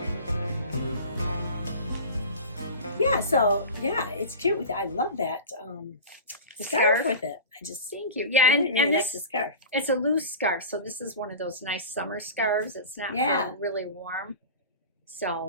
yeah, so yeah, it's cute with it. I love that scarf with it. I just Thank you. Yeah, really, really and like this, the scarf. it's a loose scarf, so this is one of those nice summer scarves. It's not really warm.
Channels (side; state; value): both; inverted; correlation -0.34